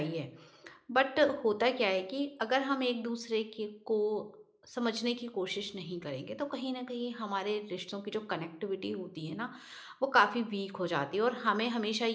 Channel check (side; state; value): both; identical; correlation 1.00